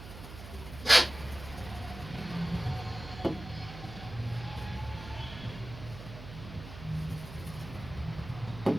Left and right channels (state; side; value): noise; right; hum, 12 dB below the sound